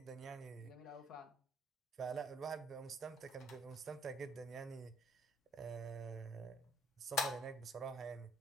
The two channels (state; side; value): normal; both; correlation 0.65